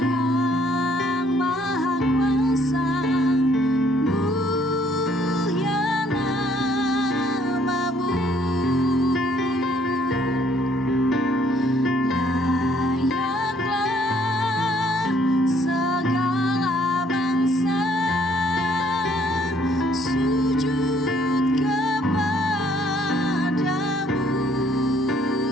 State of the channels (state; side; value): normal; both; correlation 0.65